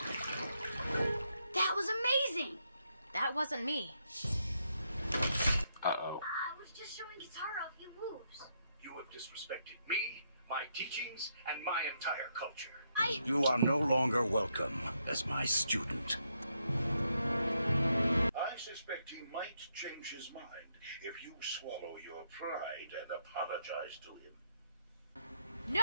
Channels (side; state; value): both; inverted; correlation -0.78